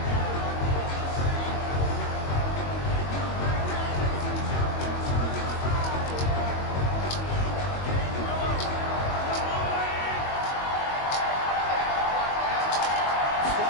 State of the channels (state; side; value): late; right; 22 ms